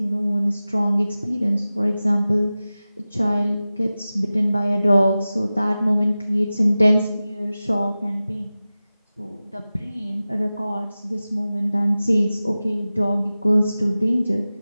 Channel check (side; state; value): both; inverted; correlation -0.96